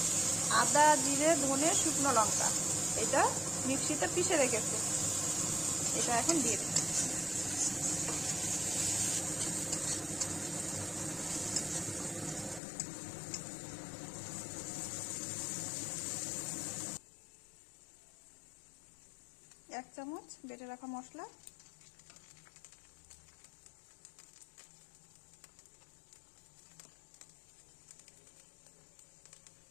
আদা, জিরে, ধনে, শুকনো লঙ্কা, এটা মিক্সিতে পিষে রেখেছি, এটা এখন দিয়ে দেব। এক চামচ বেটে রাখা মশলা,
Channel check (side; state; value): right; drops out; at 12.6 s